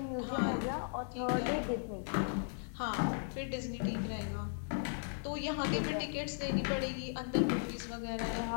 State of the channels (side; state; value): right; silent; digital silence